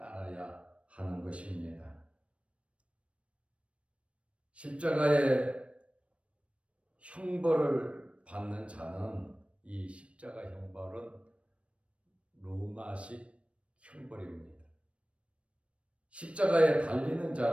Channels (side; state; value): left; late; 0.061 ms